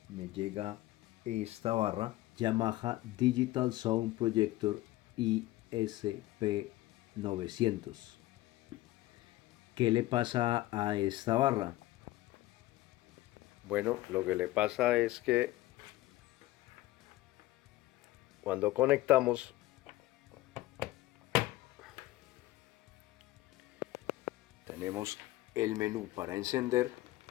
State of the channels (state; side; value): quieter; right; 17.2 dB